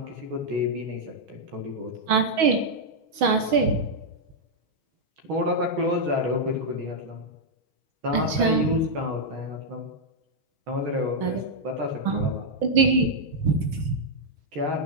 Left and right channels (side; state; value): left; late; 6.2 ms